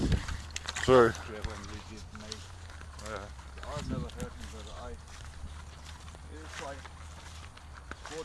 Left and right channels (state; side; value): identical; both; correlation 1.00